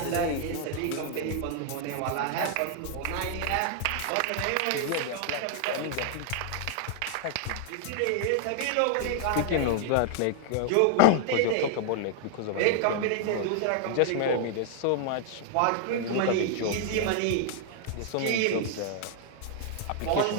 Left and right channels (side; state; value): both; different; correlation 0.00